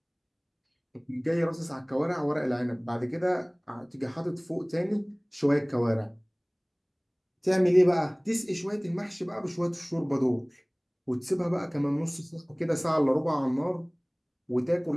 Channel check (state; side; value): identical; both; correlation 1.00